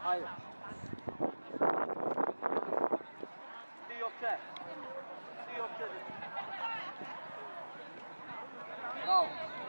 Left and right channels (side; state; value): both; inverted; correlation -1.00